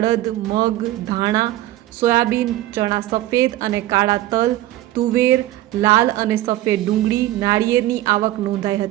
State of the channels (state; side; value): quieter; left; 15.2 dB